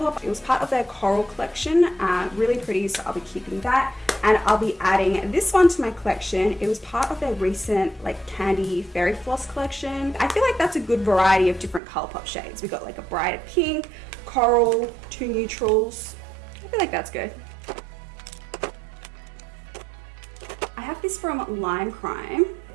it was part of their Coral collection, really pretty, so I'll be keeping that. And I'll be adding this one to my collection. It was part of their recent like candy fairy floss collection. I feel like that's a good variety of different Colourpop shades. We got like a brighter pink, coral, 2 neutrals. I feel like that's good. I have this from Lime Crime.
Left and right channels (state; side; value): drops out; left; at 11.8 s